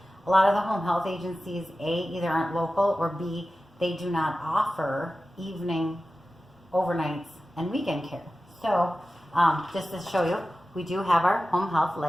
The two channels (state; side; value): normal; both; correlation 0.95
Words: a lot of the home health agencies, A, either aren't local, or B, they do not offer evening, overnights, and weekend care. So just to show you, we do have our home health